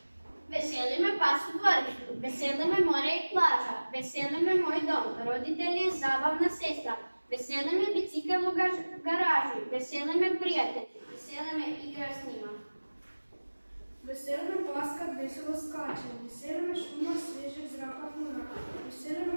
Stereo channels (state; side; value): inverted; both; correlation -1.00